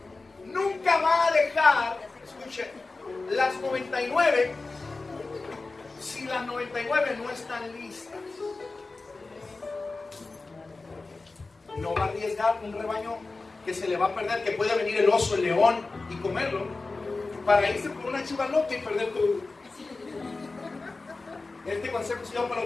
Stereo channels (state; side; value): quieter; right; 3.6 dB